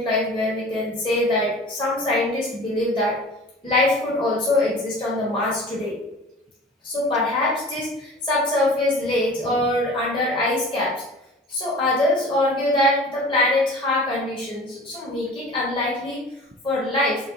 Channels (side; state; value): both; normal; correlation 0.41